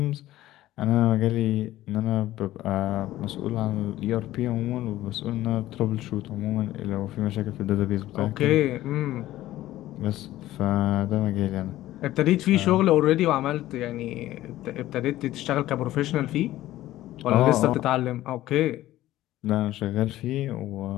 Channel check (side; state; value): right; quieter; 15.1 dB